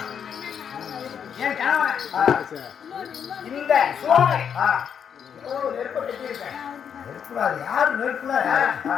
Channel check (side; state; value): right; quieter; 7.8 dB